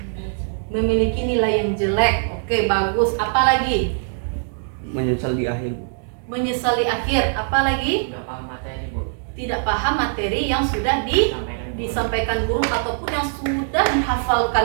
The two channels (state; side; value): silent; left; digital silence